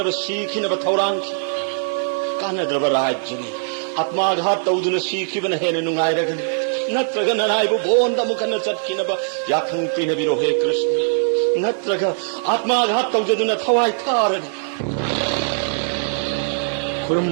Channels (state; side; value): silent; left; digital silence